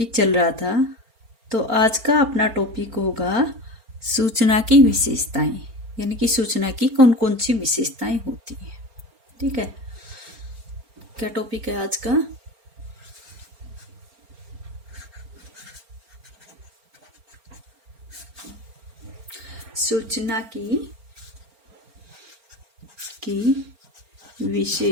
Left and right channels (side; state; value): left; late; 4.4 ms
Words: चल रहा था। तो आज का अपना टॉपिक होगा सूचना की विशेषताएं, यानी कि सूचना की कौन कौन सी विशेषताएं होती हैं। ठीक है, क्या टॉपिक है आज का? सूचना की